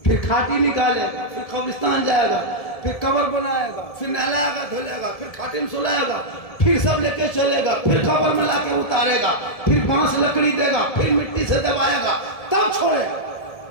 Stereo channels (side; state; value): right; late; 1.7 ms